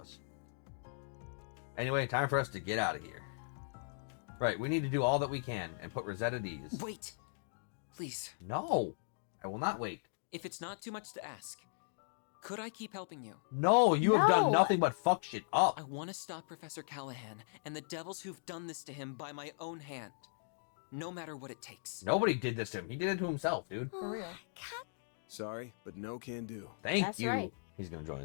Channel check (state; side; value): silent; right; digital silence